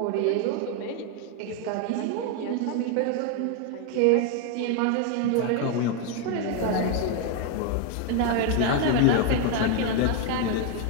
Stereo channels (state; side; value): different; both; correlation 0.01